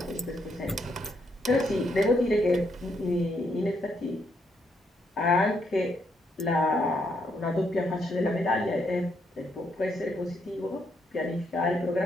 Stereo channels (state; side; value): normal; both; correlation 0.75